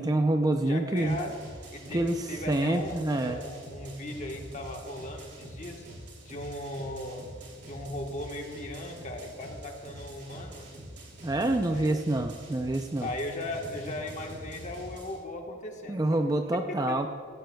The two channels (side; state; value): both; normal; correlation 0.72